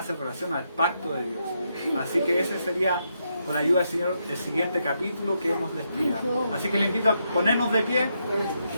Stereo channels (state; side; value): inverted; both; correlation -0.80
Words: relación al pacto de Dios. Así que ese sería, con la ayuda del Señor, el siguiente capítulo que hemos de estudiar. Así que le invito a ponernos de pie y